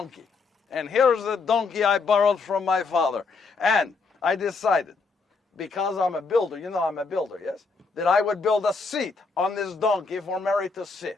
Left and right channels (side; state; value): right; quieter; 4.4 dB